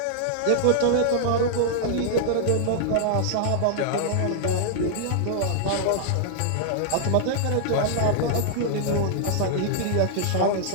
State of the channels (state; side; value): different; both; correlation -0.01